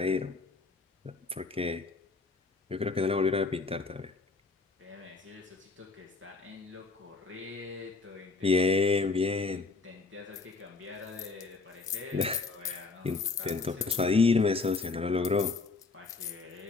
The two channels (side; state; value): right; quieter; 4.0 dB